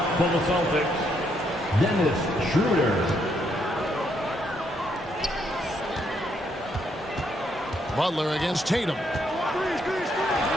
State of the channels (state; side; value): normal; both; correlation 0.74